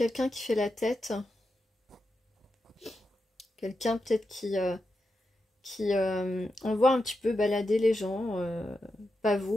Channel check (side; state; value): both; normal; correlation 0.87